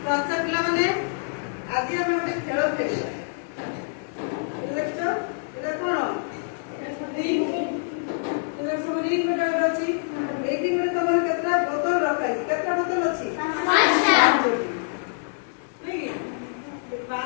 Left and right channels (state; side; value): silent; right; digital silence